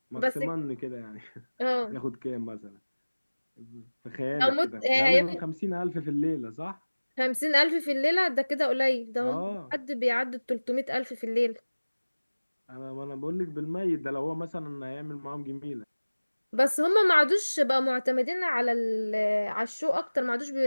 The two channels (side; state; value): both; inverted; correlation -1.00